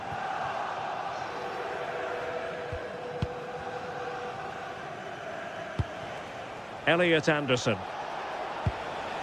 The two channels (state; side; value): identical; both; correlation 1.00